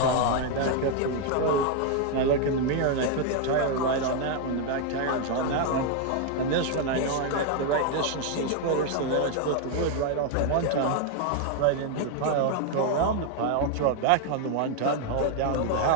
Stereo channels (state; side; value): different; both; correlation 0.00